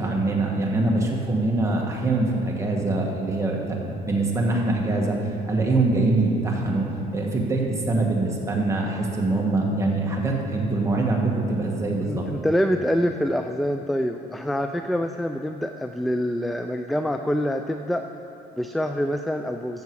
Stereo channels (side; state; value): both; normal; correlation 0.73